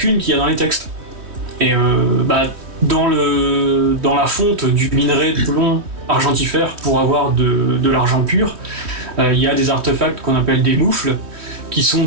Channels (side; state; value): left; late; 3.1 ms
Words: qu'il y a dans les textes. Et bah, dans la fonte du minerai de plomb argentifère pour avoir de l'argent pur, il y a des artefacts qu'on appelle des moufles, qui sont